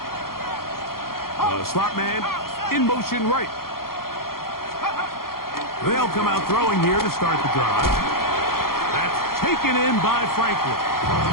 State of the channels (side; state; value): right; late; 0.93 ms